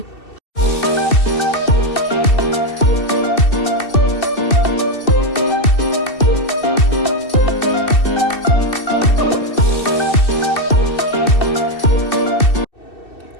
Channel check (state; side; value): late; right; 2.7 ms